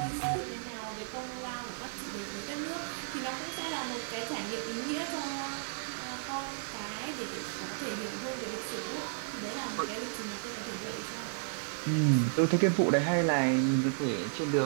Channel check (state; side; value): silent; left; digital silence